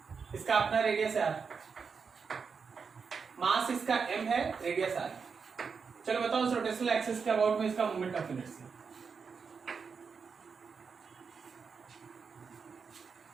इसका अपना रेडियस है r, मास इसका m है, रेडियस r। चलो बताओ उस रोटेशनल एक्सिस के अबाउट में इसका मोमेंट ऑफ इनर्शिया।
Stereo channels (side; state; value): left; quieter; 5.6 dB